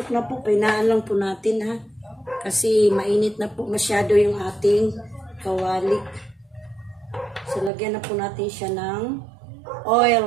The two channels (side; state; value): left; drops out; at 7.7 s